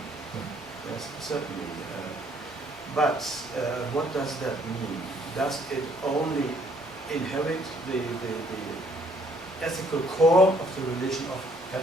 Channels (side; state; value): both; normal; correlation 0.64